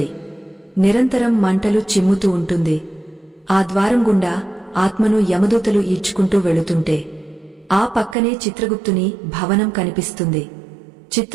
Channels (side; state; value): left; drops out; at 8.2 s